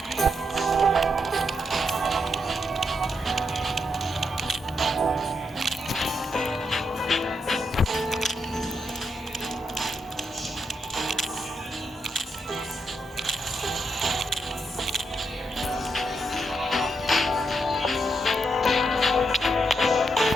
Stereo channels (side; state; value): both; normal; correlation 0.81